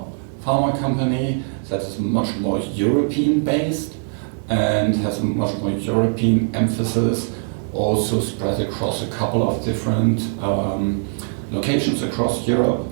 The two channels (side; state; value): left; silent; digital silence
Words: pharma company that is much more European based and has a much more European emphasis, also spread across a couple of different locations across Europe,